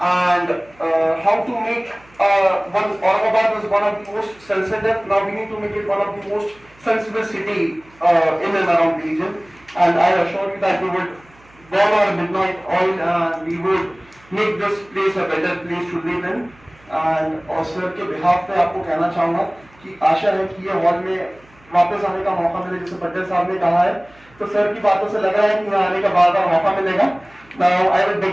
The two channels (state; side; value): noise; right; hum, 28 dB below the sound